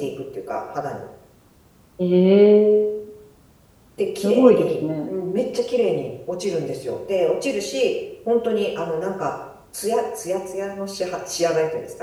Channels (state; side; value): identical; both; correlation 1.00